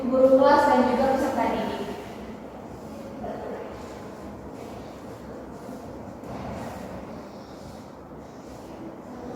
Guru kelas dan juga peserta didik.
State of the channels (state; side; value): identical; both; correlation 1.00